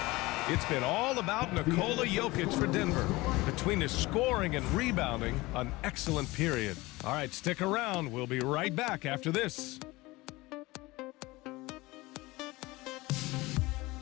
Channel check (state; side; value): quieter; right; 21.1 dB